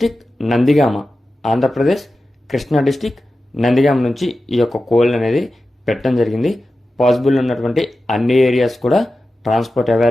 నందిగామ, ఆంధ్రప్రదేశ్ కృష్ణా డిస్టిక్ నందిగామ నుంచి ఈ యొక్క కోళ్ళు అనేది పెట్టడం జరిగింది. పాసిబుల్ ఉన్నటువంటి అన్ని ఏరియాస్ కూడా ట్రాన్స్పోర్ట్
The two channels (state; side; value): normal; both; correlation 0.93